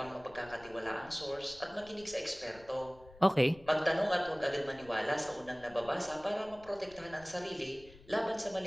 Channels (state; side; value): noise; left; rumble, 22 dB below the sound